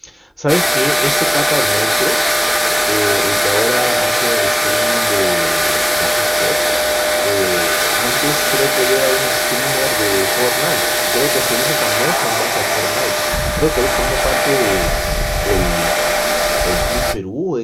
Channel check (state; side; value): identical; both; correlation 1.00